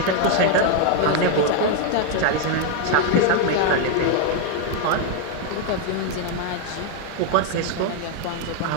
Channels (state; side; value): different; both; correlation 0.01